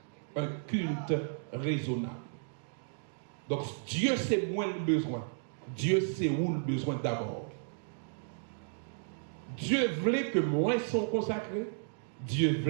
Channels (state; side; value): silent; left; digital silence